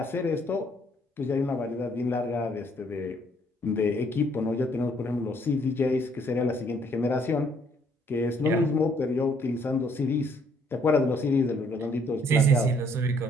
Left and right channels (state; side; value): normal; both; correlation 0.66